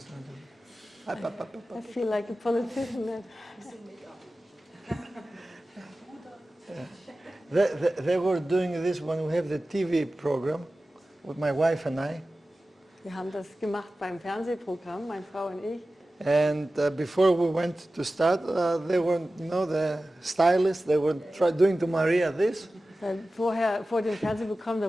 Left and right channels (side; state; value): both; normal; correlation 0.95